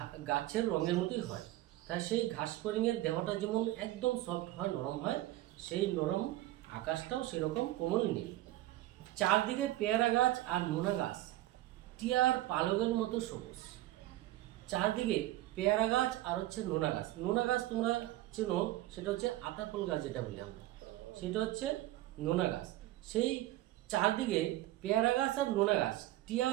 গাছের রঙের মতোই হয়। তাই সেই ঘাস ফড়িংয়ের দেহটা যেমন একদম সফট হয়, নরম হয়, সেই নরম আকাশটাও সেরকম কোমল নীল। চারদিকে পেয়ারা গাছ আর নোনা গাছ টিয়ার পালকের মতো সবুজ। চারদিকে পেয়ারা গাছ আর হচ্ছে নোনা গাছ। নোনা গাছ তোমরা চেনো, সেটা হচ্ছে আতাফল গাছ যেটা বলি আমরা, সেটা হচ্ছে নোনা গাছ। সেই চারদিকে পেয়ারা গাছ আর নোনা গাছ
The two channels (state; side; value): quieter; left; 16.0 dB